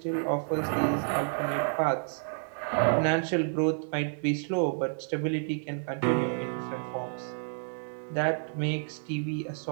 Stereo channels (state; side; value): silent; left; 58 dB below the other